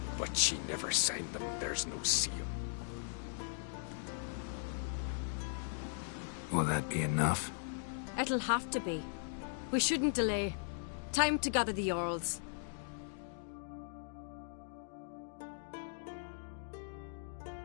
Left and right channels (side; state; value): right; silent; digital silence